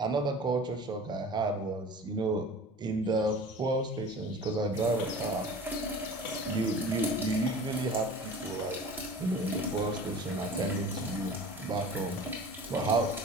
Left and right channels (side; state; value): both; normal; correlation 0.40